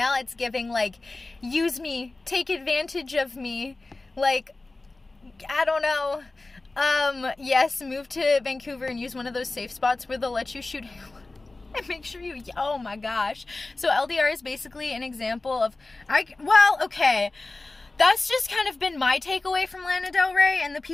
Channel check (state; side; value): quieter; right; 3.2 dB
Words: it's giving like, use me, take advantage of me. Like, I don't know. Yes, move to Vancouver and use one of those safe spots where they'll let you shoot and make sure you, oh my gosh. So LDR is basically an example of, okay, that's just kind of been my takeaway from Lana Del Rey and the